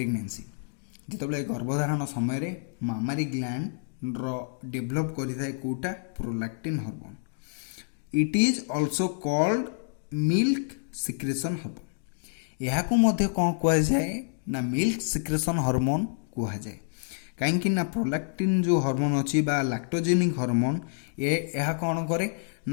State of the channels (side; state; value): right; silent; digital silence